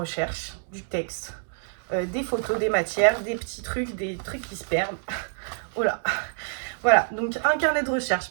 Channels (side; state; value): left; silent; 60 dB below the other